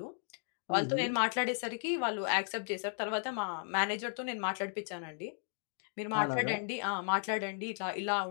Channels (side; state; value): right; silent; 54 dB below the other